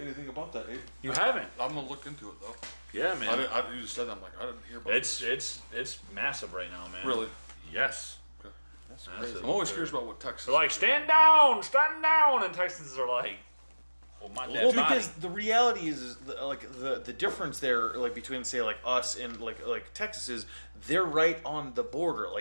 anything about that. Abe. you haven't? I'm gonna look into it though. Yeah, man. You just said that, I'm like, I didn't hear about It's massive right now, man. Really? Yes. Okay. Massive. I'm always curious about what Texas. They're like, stand down, and Texans are like, well, my dad's Well, because the reality is the difference there, like between say like us and like Texas is they're right on the border.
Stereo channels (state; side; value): inverted; both; correlation -1.00